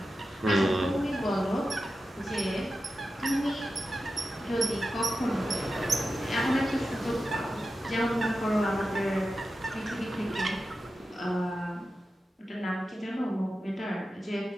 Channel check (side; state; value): both; normal; correlation 0.92